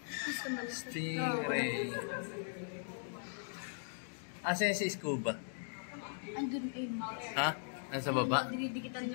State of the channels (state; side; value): silent; right; digital silence